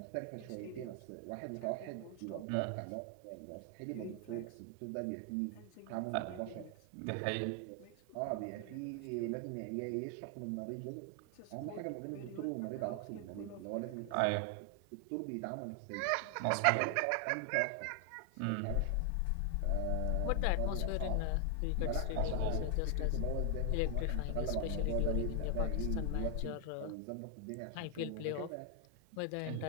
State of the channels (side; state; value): both; different; correlation 0.00